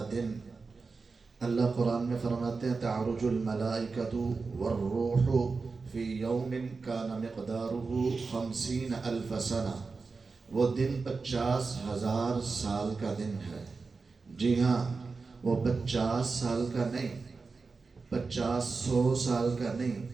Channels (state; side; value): quieter; left; 4.4 dB